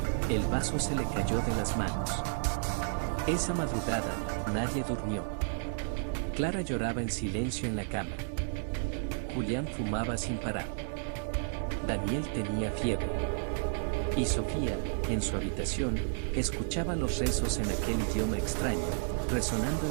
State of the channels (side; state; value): left; silent; digital silence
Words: El vaso se le cayó de las manos. Esa madrugada, nadie durmió. Clara lloraba en silencio en la cama. Julián fumaba sin parar. Daniel tenía fiebre. Y Sofía, en su habitación, escuchaba los rezos en aquel idioma extraño, resonando